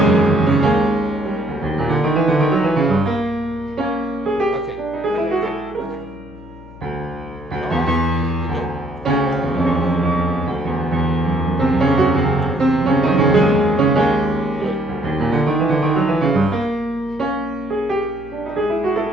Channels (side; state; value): left; noise; hum, 19 dB below the sound